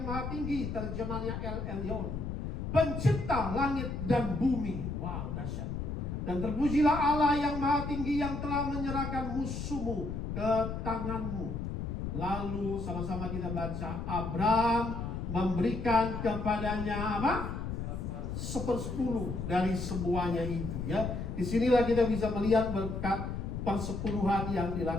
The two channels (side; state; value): left; noise; rumble, 4 dB below the sound